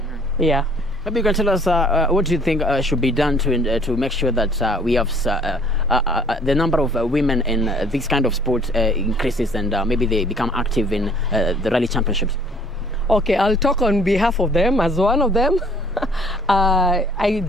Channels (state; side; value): normal; both; correlation 0.57